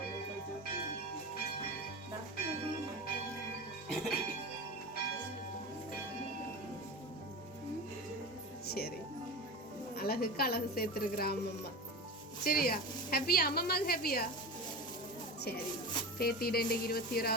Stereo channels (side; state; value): both; normal; correlation 0.27